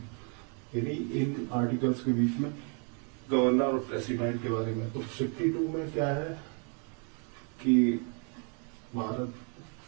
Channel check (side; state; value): left; quieter; 39.4 dB